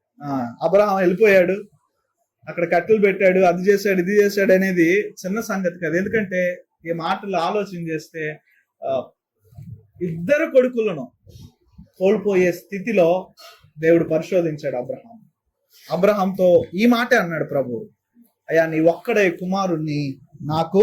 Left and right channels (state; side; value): identical; both; correlation 1.00